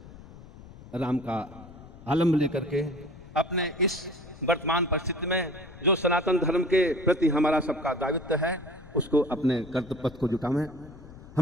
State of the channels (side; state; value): left; noise; rumble, 18 dB below the sound